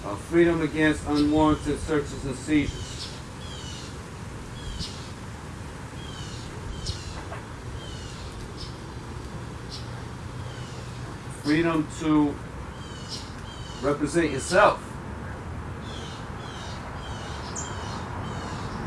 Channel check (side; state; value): both; identical; correlation 1.00